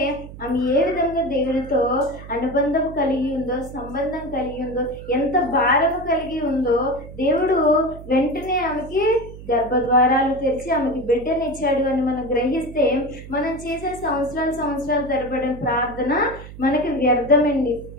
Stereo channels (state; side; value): noise; right; hum, 15 dB below the sound